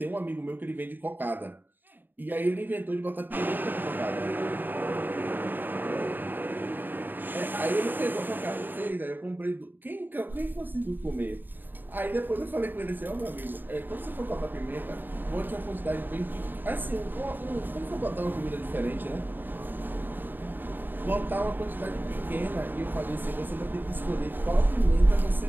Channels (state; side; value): late; left; 0.092 ms